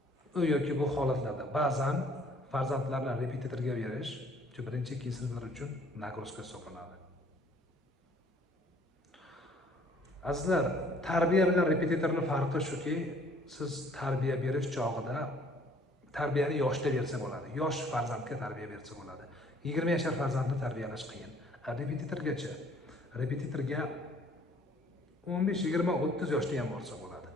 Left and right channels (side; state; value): both; normal; correlation 0.58